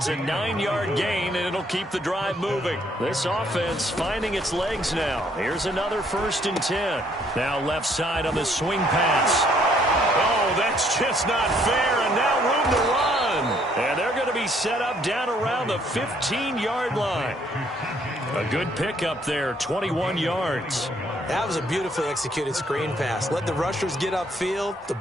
a 9-yard gain, and it'll keep the drive moving. This offense finding its legs now. Here's another 1st and 10. Now left side on the swing pass. Oh, that's just not fair, and now room to run. And they're going to be set up down around the 15-yard line. A good pickup there, 21 yards. That was a beautifully executed screen pass. Let the rushers get upfield. The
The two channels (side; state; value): both; normal; correlation 0.66